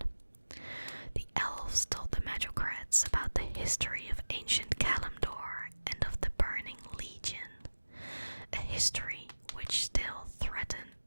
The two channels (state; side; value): inverted; both; correlation -1.00